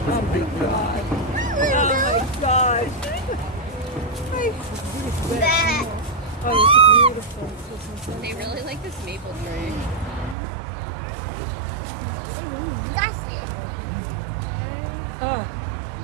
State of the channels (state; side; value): drops out; left; at 10.4 s